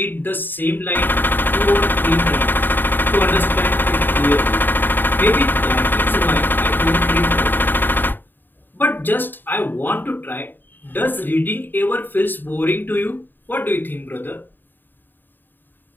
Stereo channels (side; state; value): right; late; 0.092 ms